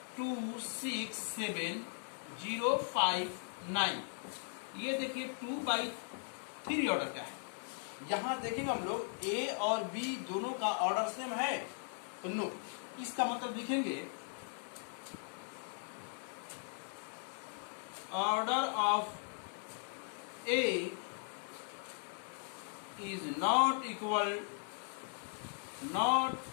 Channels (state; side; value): silent; right; 52 dB below the other